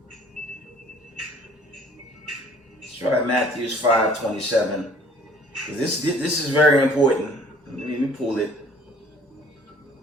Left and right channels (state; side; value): normal; both; correlation 0.54